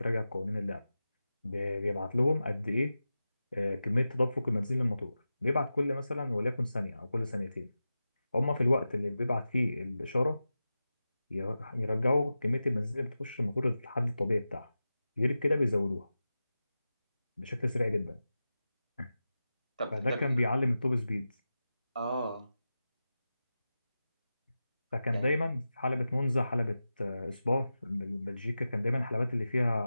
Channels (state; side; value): inverted; both; correlation -0.93